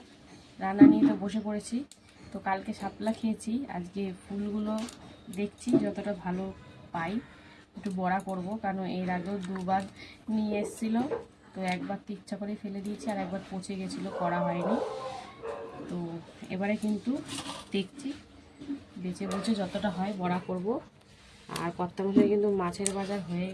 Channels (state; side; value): identical; both; correlation 1.00